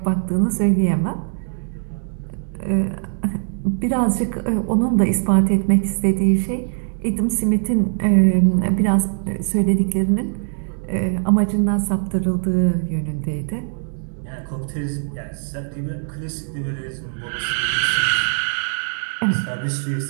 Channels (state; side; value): silent; left; digital silence